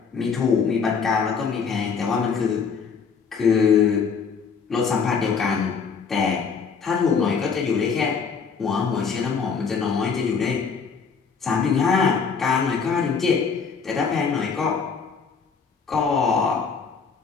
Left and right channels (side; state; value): right; quieter; 5.8 dB